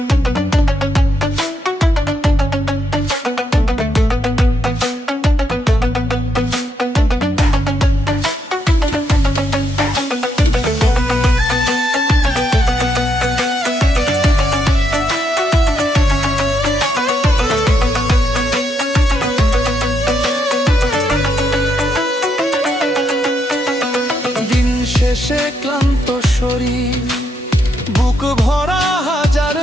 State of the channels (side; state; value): both; normal; correlation 0.78